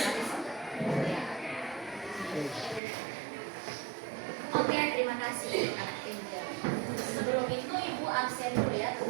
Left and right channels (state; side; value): drops out; left; at 2.8 s